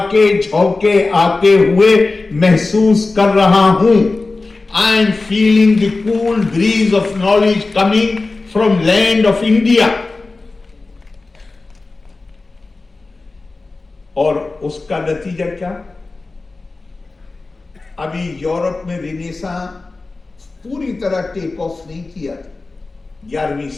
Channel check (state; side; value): quieter; right; 3.5 dB